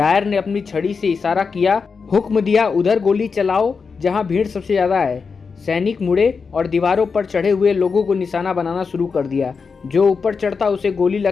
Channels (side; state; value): right; quieter; 5.2 dB